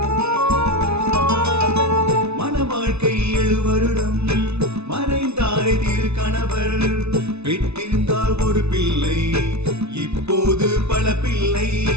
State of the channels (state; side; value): late; left; 0.81 ms